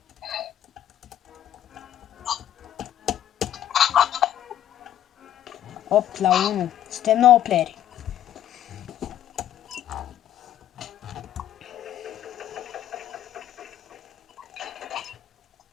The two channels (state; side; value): quieter; right; 11.4 dB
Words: Opt la 1. Suntem 9 playeri.